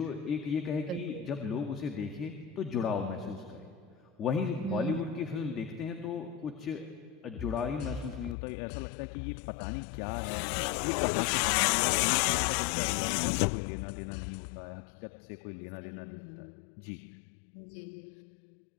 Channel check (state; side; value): drops out; right; at 8.3 s